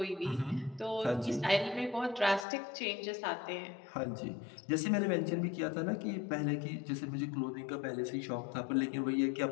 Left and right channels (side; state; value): right; drops out; at 2.5 s